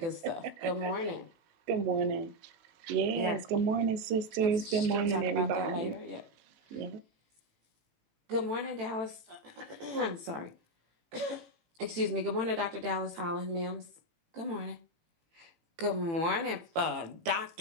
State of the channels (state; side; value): late; left; 18 ms